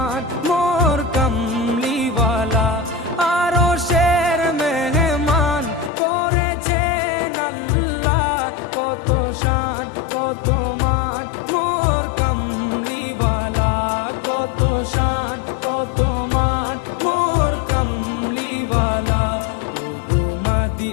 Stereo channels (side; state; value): right; drops out; at 5.9 s